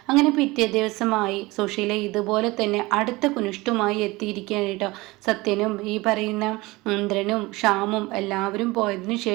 അങ്ങനെ പിറ്റേ ദിവസമായി സുശീല ഇതുപോലെ തന്നെ അടുത്ത കുനിഷ്ടുമായി എത്തിയിരിക്കുകയാണ് കേട്ടോ. സത്യനും ഈ പറയുന്ന ഇന്ദ്രനും ഷ്യാമും എല്ലാവരും പോയതിനു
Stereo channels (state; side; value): quieter; left; 21.8 dB